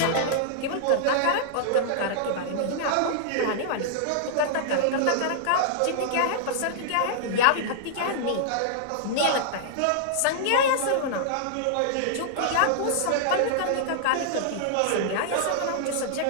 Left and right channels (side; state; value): both; different; correlation -0.01